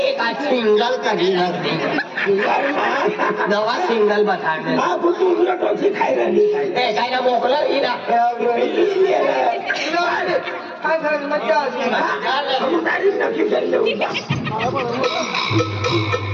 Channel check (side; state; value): both; identical; correlation 1.00